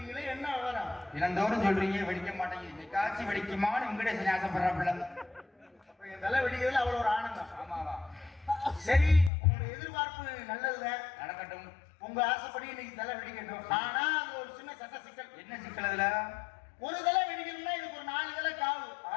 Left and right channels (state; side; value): drops out; right; at 9.3 s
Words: என்ன விவரம்? இளந்தோறும் சொல்றீங்க வெடிக்க மாட்டேங்குது காட்சி வெடிக்குமான்னு வெங்கடேசன் ஆசைப்படுறாப்புல. என் தலை வெடிக்கிறதுல அவ்வளவு ஒரு ஆனந்தம். ஆமாவா சரி உங்களுடைய எதிர்பார்ப்பு நல்லதுதான் நடக்கட்டும். உங்க ஆசைப்படி இன்னைக்கு தலை வெடிக்கட்டும். ஆனா அது ஒரு சின்ன சட்ட சிக்கல். என்ன சிக்கல்? அதுல ஒரு தலை வெடிக்கணும்னா இதுக்கு ஒரு 4 தலை காவு.